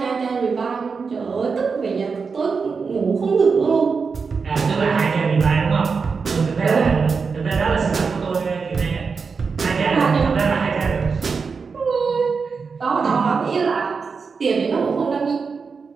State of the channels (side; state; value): left; quieter; 5.2 dB